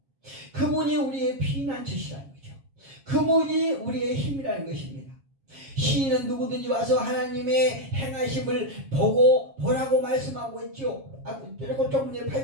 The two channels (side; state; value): left; late; 7.3 ms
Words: 그분이 우리의 피난처시라는 거죠. 그분이 우리의 힘이라는 것입니다. 시인은 누구든지 와서 하나님의 행하심을 보라고 말씀하고 있죠. 그리고 조금 전에